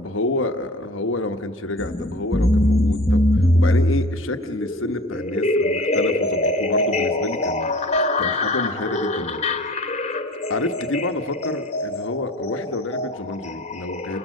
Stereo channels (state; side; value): normal; both; correlation 0.40